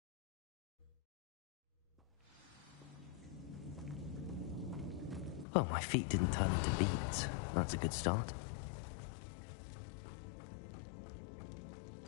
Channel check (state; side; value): drops out; right; at 5.5 s